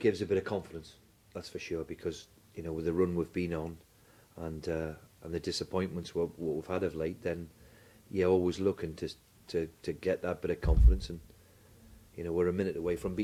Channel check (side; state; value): both; identical; correlation 1.00